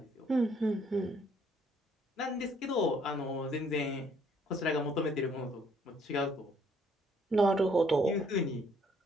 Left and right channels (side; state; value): both; normal; correlation 0.65